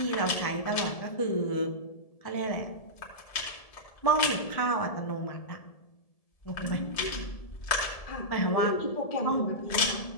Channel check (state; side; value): late; right; 1.7 ms